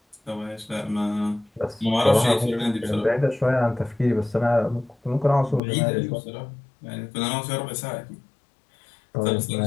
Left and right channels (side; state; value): right; drops out; at 5.6 s